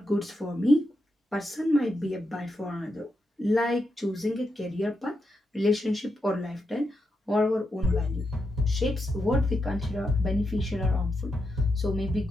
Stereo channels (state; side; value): normal; both; correlation 0.85